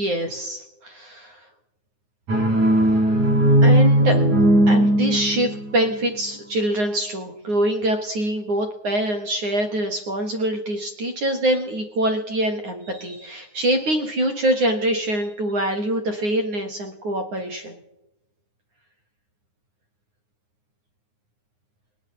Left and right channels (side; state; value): left; late; 9.6 ms